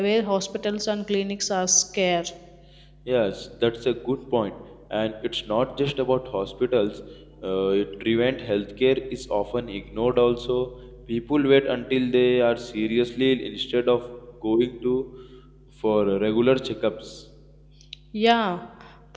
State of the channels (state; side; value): identical; both; correlation 1.00